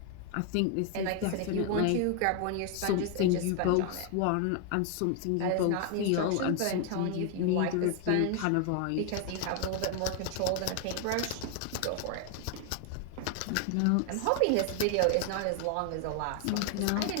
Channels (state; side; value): different; both; correlation 0.00